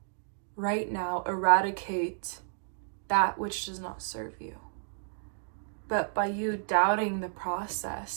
right now eradicate that which does not serve you. But by you doubting the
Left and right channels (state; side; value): silent; left; digital silence